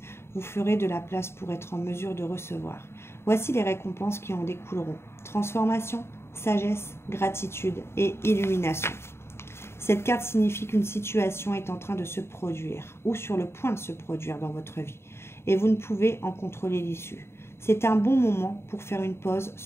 vous ferez de la place pour être en mesure de recevoir. Voici les récompenses qui en découleront. Transformation, sagesse, gratitude et illumination. Cette carte signifie qu'une situation est en train de se produire ou sur le point de se produire dans votre vie et vous ne pouvez en contrôler l'issue. C'est un bon moment pour faire une pause,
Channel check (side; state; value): right; late; 0.12 ms